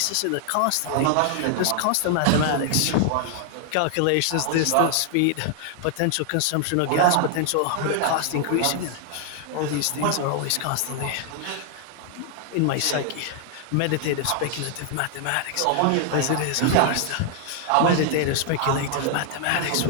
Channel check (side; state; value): both; different; correlation 0.00